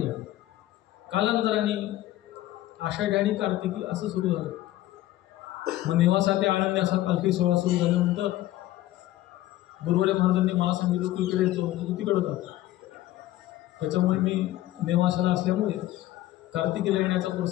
कालांतराने आषाढी आणि कार्तिकी असं सुरू झालं. मग नेवासा ते आळंदी असा पालखी सोहळा सुरू झाल्यानंतर गुरुवर्य महाराजांनी मला सांगितलं तू इकडे येतो, तू तिकडं जातो. त्याच्यामुळे मी नेवासाला असल्यामुळे कार्तिकीला येण्याचा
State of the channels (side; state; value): right; quieter; 15.2 dB